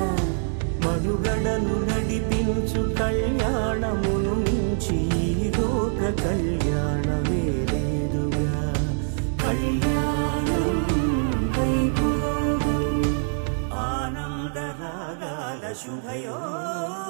మనుగడను నడిపించు కళ్యాణమును మించి ఈ లోక కళ్యాణమే లేదుగా. కళ్యాణం వైభోగం ఆనందరాగాల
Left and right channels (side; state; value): left; silent; 62 dB below the other